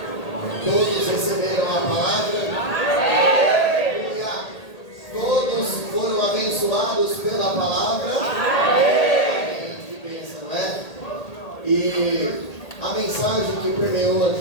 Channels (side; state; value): right; late; 1.8 ms